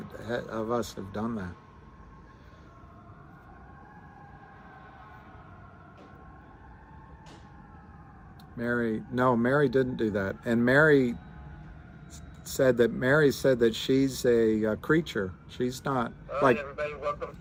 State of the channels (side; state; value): both; identical; correlation 1.00